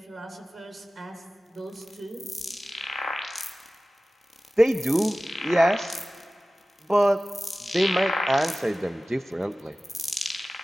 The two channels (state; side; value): normal; both; correlation 0.96